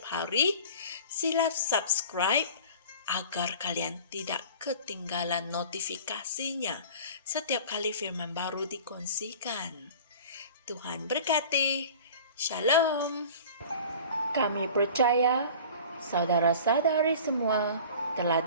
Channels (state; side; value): inverted; both; correlation -0.41